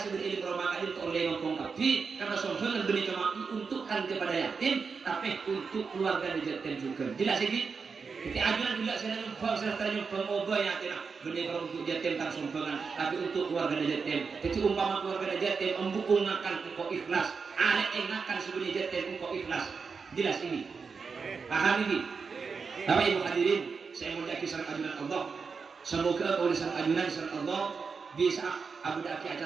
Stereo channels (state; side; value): quieter; left; 5.2 dB